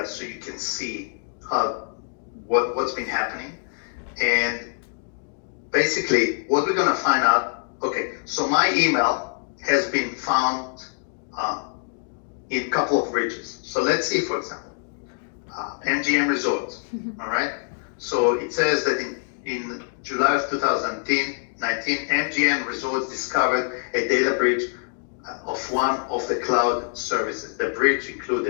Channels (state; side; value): silent; right; digital silence